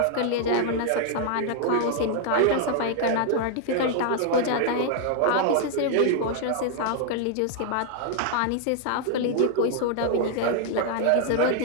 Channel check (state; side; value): different; both; correlation 0.00